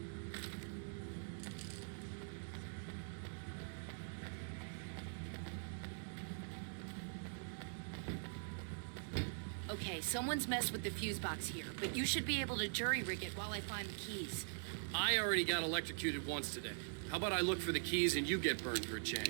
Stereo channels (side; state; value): left; silent; digital silence